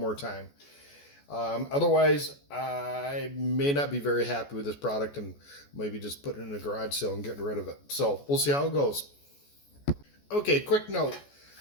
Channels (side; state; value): right; late; 14 ms